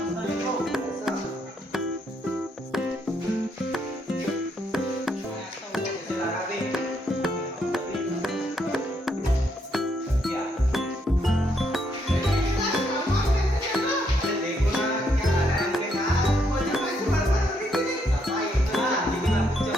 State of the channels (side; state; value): both; normal; correlation 0.75